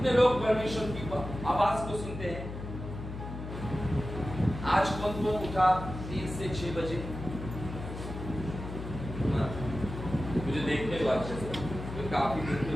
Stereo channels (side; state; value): left; noise; hum, 8 dB below the sound